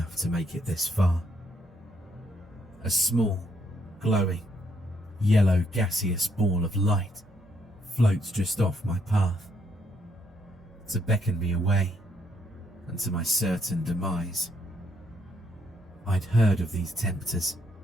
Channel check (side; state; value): both; normal; correlation 0.73